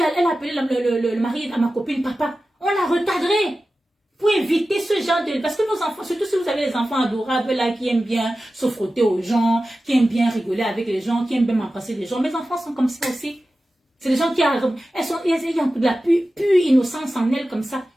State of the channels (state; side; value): normal; both; correlation 0.94